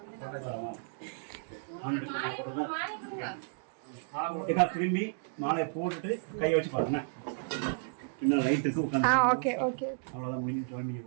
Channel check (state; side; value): silent; left; digital silence